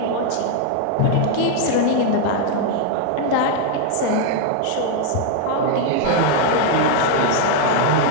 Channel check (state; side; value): different; both; correlation 0.00